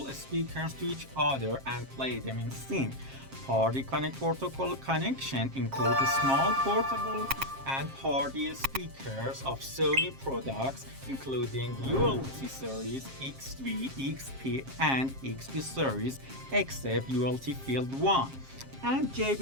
speakers to each other and play them in sync. Party Connect protocol connection includes small portable and party speakers of Sony products, including ULT series, XV, XP, and XP series, except ULT Field 1. And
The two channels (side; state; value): left; late; 7.5 ms